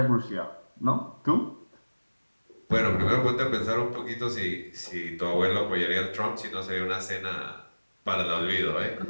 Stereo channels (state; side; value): inverted; both; correlation -1.00